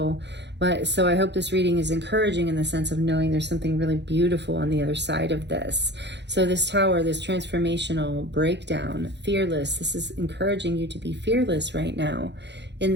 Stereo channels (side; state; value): left; late; 0.51 ms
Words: But so I hope this reading is encouraging in the sense of knowing there's something really beautiful on the other side of this. So this Tower, this transformational breakdown, fearless, this is encouraging you to be fearless right now in